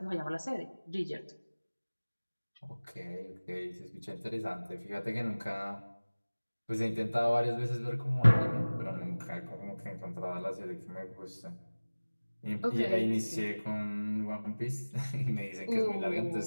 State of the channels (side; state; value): both; inverted; correlation -1.00